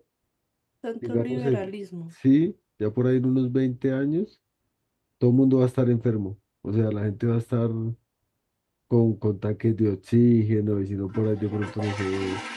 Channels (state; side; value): identical; both; correlation 1.00